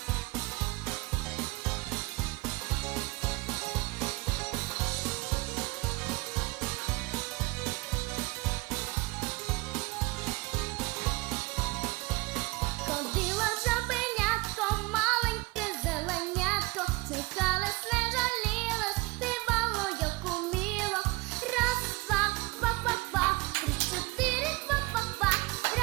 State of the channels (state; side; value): quieter; left; 23.2 dB